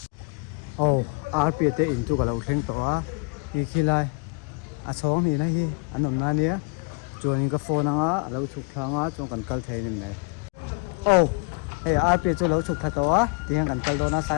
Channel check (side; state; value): right; quieter; 30.8 dB